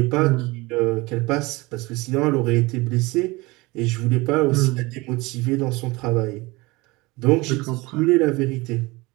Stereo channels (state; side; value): quieter; left; 23.0 dB